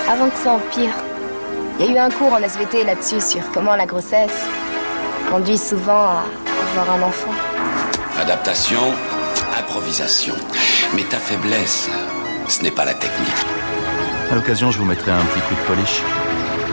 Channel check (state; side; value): inverted; both; correlation -1.00